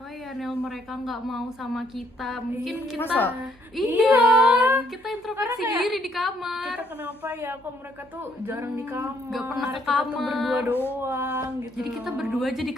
ya Nel mereka nggak mau sama kita, mungkin kita masa? iya kita introspeksi Karena kayak diri di kamar. Kita kenapa ya kok mereka tuh jarang di kamar, nggak pernah ke kita tuh kamar. berdua doang gitu. Jadi kita berdua aja di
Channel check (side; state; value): both; normal; correlation 0.69